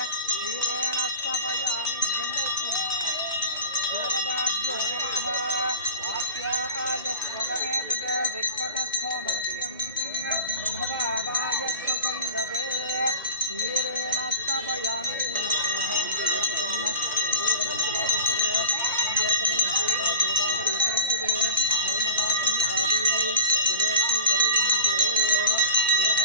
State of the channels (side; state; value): both; inverted; correlation -0.37